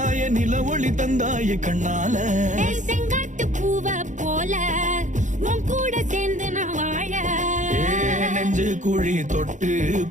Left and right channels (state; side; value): late; left; 0.36 ms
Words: நில ஒளி தந்தாய கண்ணால. செங்காட்டு பூவ போல உன் கூட சேர்ந்து நான் வாழ. நெஞ்சு குழி தொட்டு